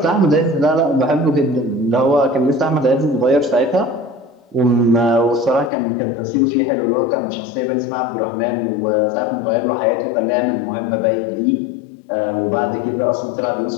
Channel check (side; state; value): right; drops out; at 5.7 s